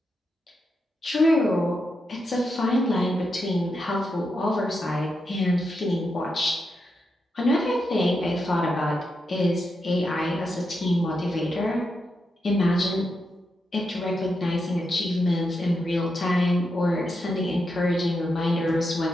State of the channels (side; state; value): both; normal; correlation 0.85